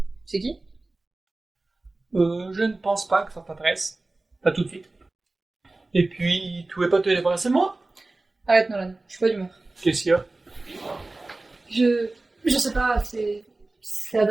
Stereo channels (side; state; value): left; quieter; 3.1 dB